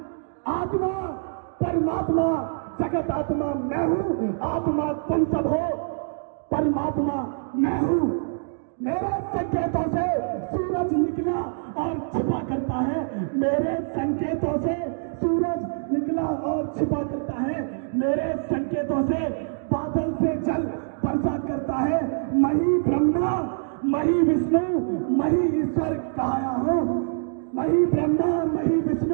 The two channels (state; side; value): silent; left; digital silence